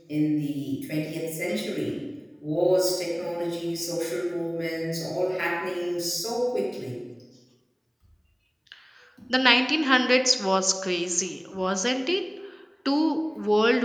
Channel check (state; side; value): identical; both; correlation 1.00